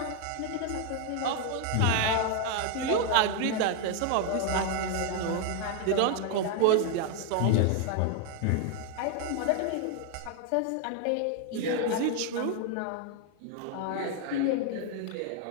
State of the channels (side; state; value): both; different; correlation 0.00